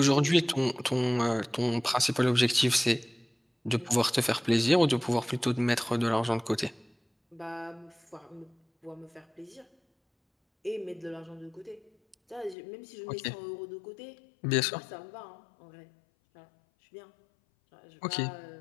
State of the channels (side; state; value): right; drops out; at 12.6 s